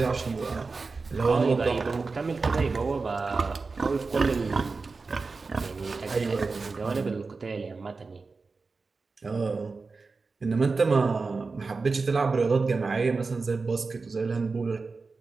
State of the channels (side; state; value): left; quieter; 4.2 dB